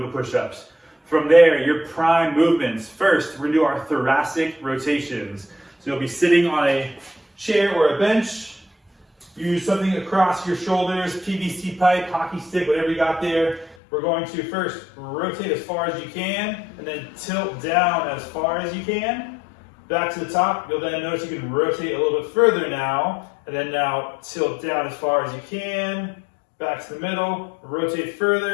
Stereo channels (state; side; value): drops out; right; at 13.8 s